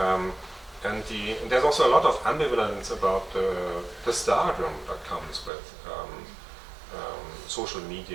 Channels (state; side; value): drops out; left; at 5.5 s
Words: And there's also a lot of ambivalence about the stardom that comes with social